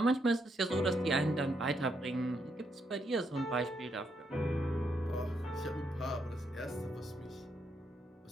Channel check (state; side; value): normal; both; correlation 0.78